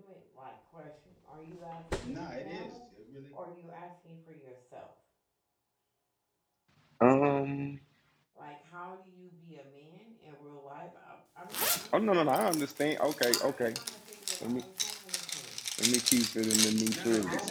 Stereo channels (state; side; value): identical; both; correlation 1.00